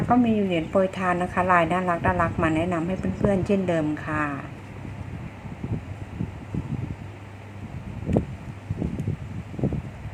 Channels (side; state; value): both; identical; correlation 1.00